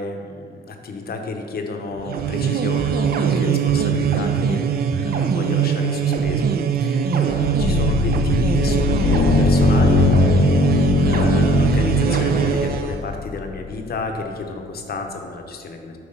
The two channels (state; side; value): normal; both; correlation 0.53